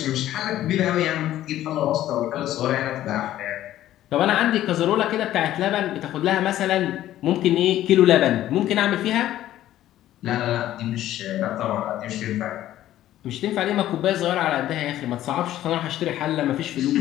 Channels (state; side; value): quieter; right; 13.3 dB